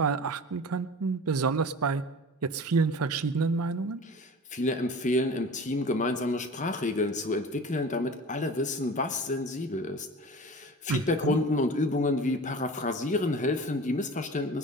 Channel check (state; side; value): normal; both; correlation 0.37